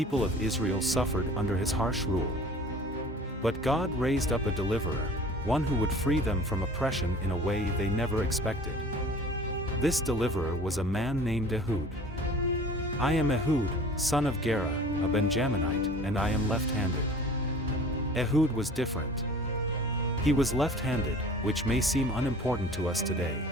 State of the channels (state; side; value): normal; both; correlation 0.45